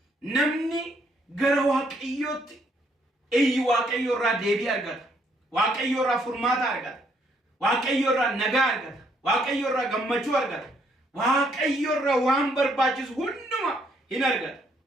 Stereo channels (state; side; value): normal; both; correlation 0.70